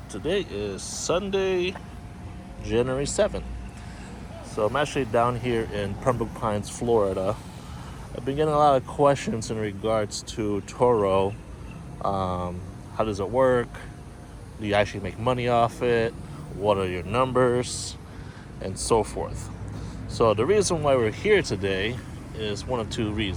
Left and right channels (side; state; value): both; identical; correlation 1.00